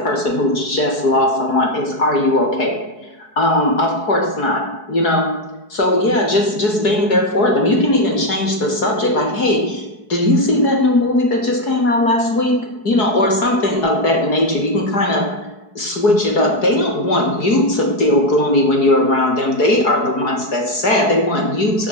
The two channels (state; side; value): late; right; 4.7 ms